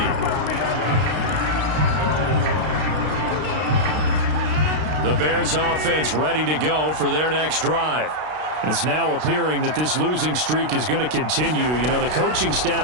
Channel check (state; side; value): late; left; 32 ms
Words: The Bears offense ready to go for their next drive. It's now appearing that this losing streak is going to continue. You know, the coaching